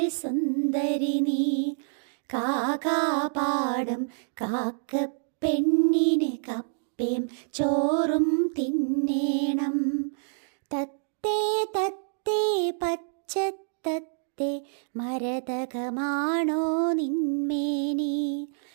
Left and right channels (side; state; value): left; silent; digital silence